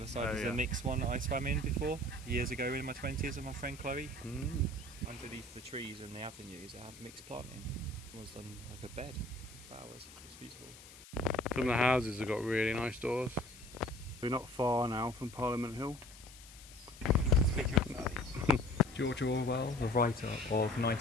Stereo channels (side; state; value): left; noise; hiss, 18 dB below the sound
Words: side is yeah. a mixed one that I swam in before, years ago in my 20s with my friend Chloe. Underneath the trees and the avenues I have mixed planting. It was done like a bed of flowers. It was beautiful. Some of the houses have got really nice doors. We're not far now from Parliament Hill. Speaking of that, George Orwell, the writer of